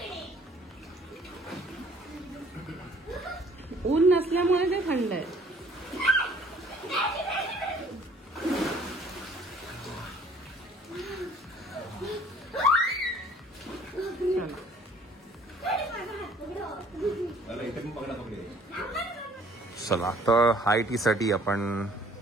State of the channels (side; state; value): both; normal; correlation 0.56